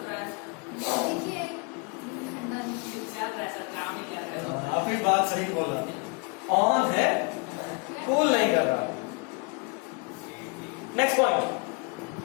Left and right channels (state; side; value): quieter; right; 32.5 dB